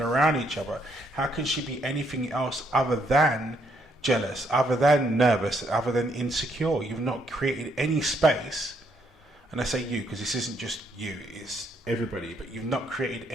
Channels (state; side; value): normal; both; correlation 0.72